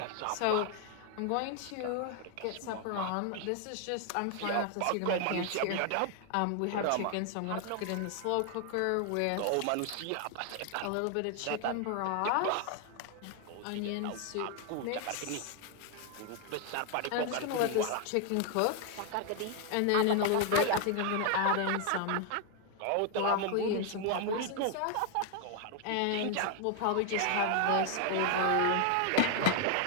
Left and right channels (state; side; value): different; both; correlation 0.01